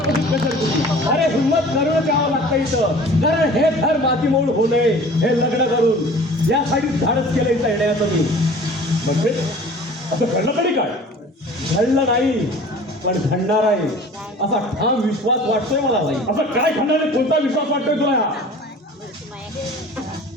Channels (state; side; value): normal; both; correlation 0.45